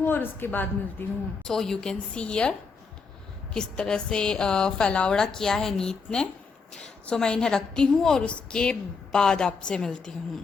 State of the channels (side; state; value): right; quieter; 4.9 dB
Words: और उसके बाद मिलती हूँ। So you can see here किस तरह से फैलावड़ा किया है नीत ने। सो मैं इन्हें रखती हूँ और उसके बाद आपसे मिलती